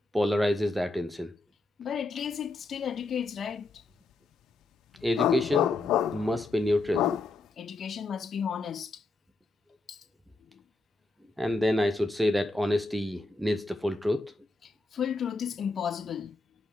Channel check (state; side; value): quieter; right; 3.1 dB